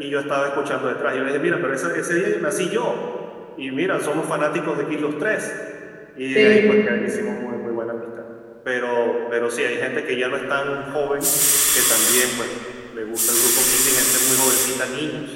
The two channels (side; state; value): both; identical; correlation 1.00